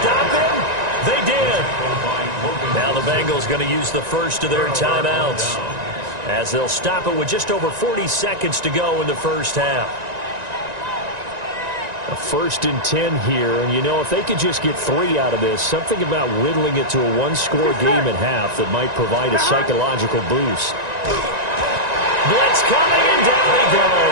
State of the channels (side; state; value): left; late; 1.9 ms